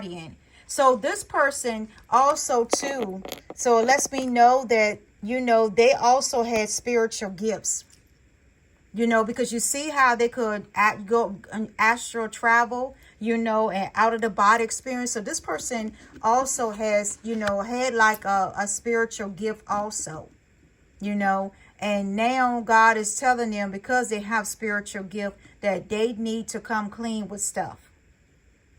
So this person also too, so it lets me know that, they also had spiritual gifts. You know, because you see how they could go astral travel, you know, and out of the body experience. So this person also has, you know, had like a spiritual gift also, you know. And now God is telling them, because they have spiritual gift, that they need to come clean with stuff.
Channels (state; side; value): identical; both; correlation 1.00